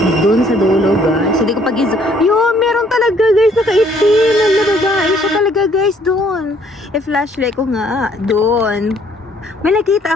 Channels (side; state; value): both; normal; correlation 0.63